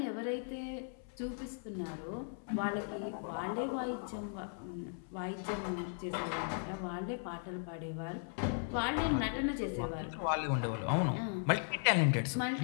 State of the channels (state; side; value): silent; right; 53 dB below the other